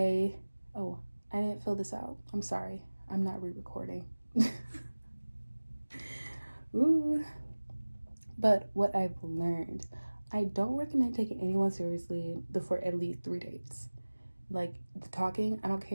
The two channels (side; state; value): both; inverted; correlation -1.00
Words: didn't fill this out. I'm sorry. I'm not re-recording. Ooh. But what I've learned, I don't recommend taking anyone seriously before at least 3 dates. Like, the talking, I don't